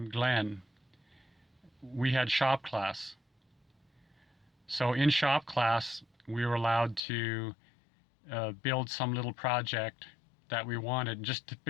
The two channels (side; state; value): right; drops out; at 7.0 s